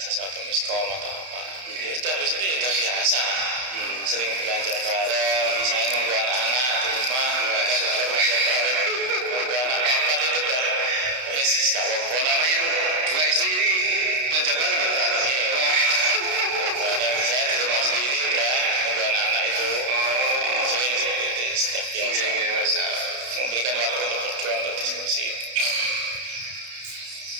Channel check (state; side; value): late; left; 32 ms